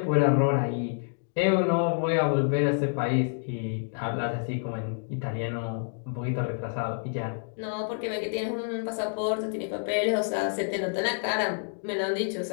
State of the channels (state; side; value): silent; right; digital silence